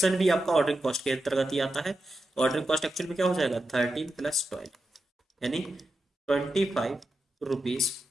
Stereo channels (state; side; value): normal; both; correlation 0.89